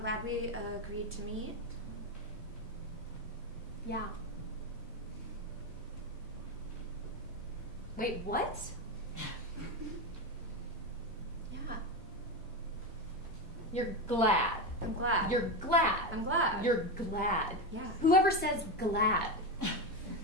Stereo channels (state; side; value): normal; both; correlation 0.14